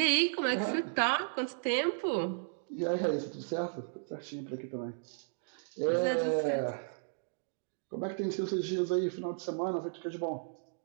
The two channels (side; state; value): left; silent; digital silence